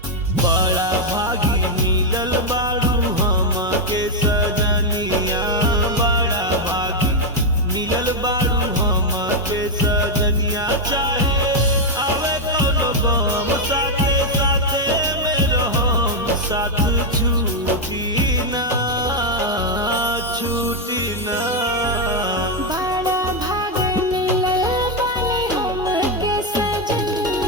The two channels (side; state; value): both; normal; correlation 0.01